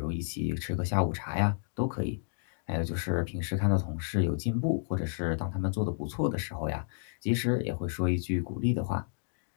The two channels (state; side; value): silent; right; digital silence